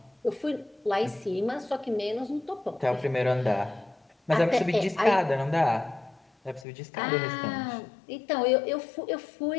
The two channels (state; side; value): drops out; right; at 6.7 s